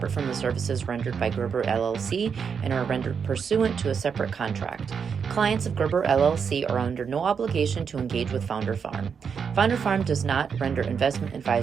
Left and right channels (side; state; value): left; quieter; 6.5 dB